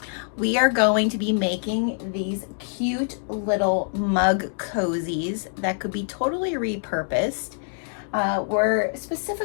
We are going to be making these cute little mug cozies that could be totally repurposed. We're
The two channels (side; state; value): right; silent; digital silence